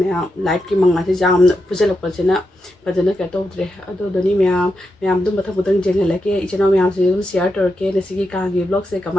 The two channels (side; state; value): both; normal; correlation 0.86